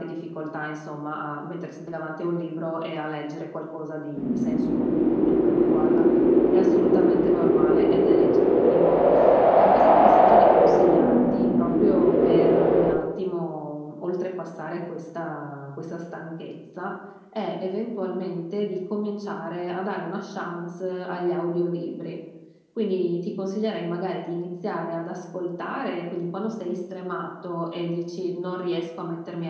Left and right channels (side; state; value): both; identical; correlation 1.00